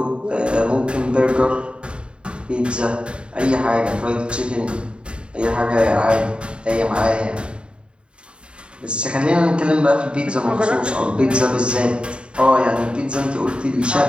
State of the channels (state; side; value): late; left; 0.054 ms